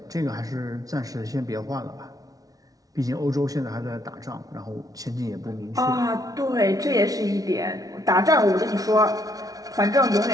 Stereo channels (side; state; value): left; late; 0.18 ms